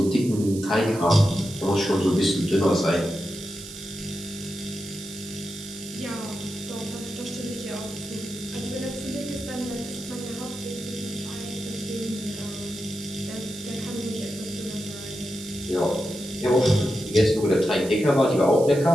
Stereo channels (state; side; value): noise; right; hiss, 14 dB below the sound